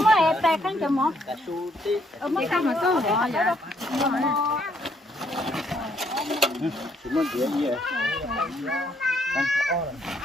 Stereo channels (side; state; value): both; normal; correlation 0.70